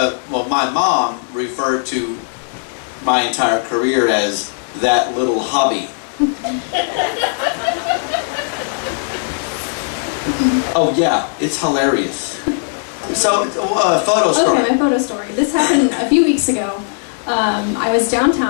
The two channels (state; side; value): silent; right; digital silence